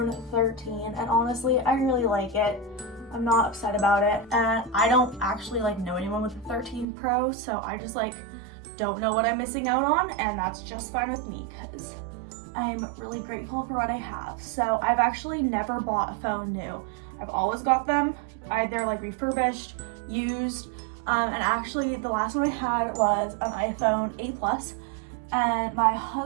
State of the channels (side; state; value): left; drops out; at 6.9 s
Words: 13, and honestly, I really like it. I'm not upset about it, and I don't actually like know anyone with the 13 Pro, so I just like don't know what I'm missing out on, and that's just fine with me because I'm really grateful for what I have. So I've actually never bought a phone new. I've always got them either like refurbished, used, and actually the last one I had was an iPhone 8 Plus, and my